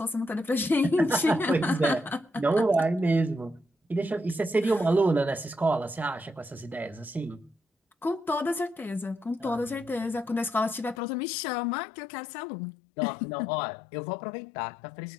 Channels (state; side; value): drops out; right; at 11.0 s